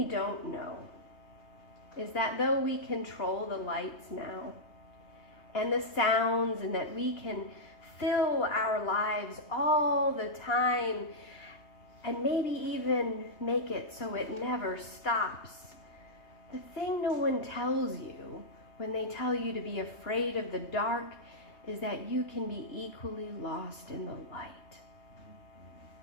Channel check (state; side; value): late; right; 3.2 ms